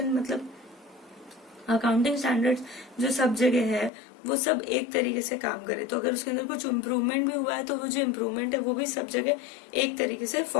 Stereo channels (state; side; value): drops out; right; at 3.9 s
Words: मतलब अकाउंटिंग स्टैंडर्ड्स जो सब जगह है वो सब एक तरीके से काम करे, तो अगर उसके अंदर कुछ इम्प्रूवमेंट भी हुआ है तो वो जो इम्प्रूवमेंट है वो भी सब जगह एक तरीके से